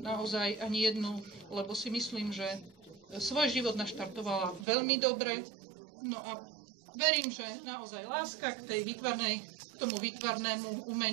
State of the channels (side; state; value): left; drops out; at 4.7 s